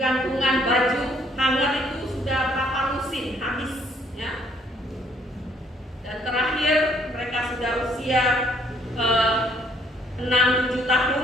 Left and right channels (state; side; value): normal; both; correlation 0.65